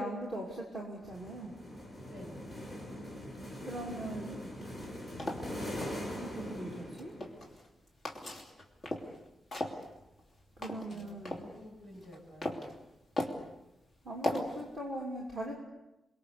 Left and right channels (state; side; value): normal; both; correlation 0.80